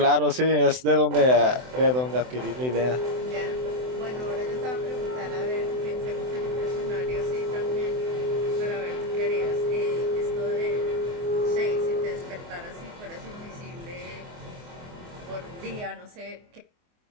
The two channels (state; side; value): late; left; 24 ms